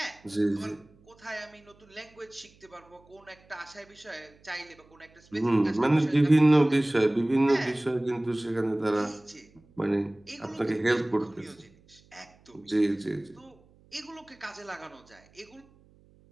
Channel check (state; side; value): noise; right; hum, 29 dB below the sound